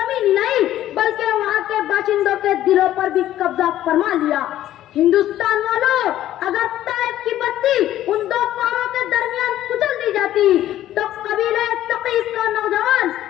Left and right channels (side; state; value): right; quieter; 13.0 dB